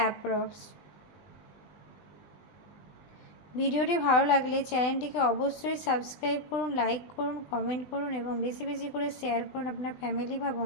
ভিডিওটি ভালো লাগলে চ্যানেলটিকে অবশ্যই সাবস্ক্রাইব করুন, লাইক করুন, কমেন্ট করুন এবং বেশি বেশি করে শেয়ার করুন আপনার ফ্যামিলি বা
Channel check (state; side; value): late; right; 20 ms